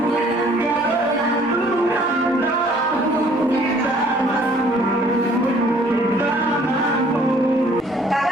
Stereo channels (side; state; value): both; normal; correlation 0.58